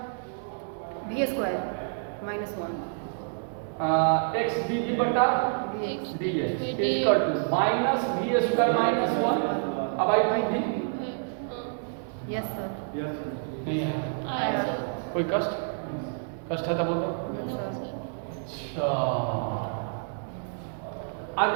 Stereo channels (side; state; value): left; silent; digital silence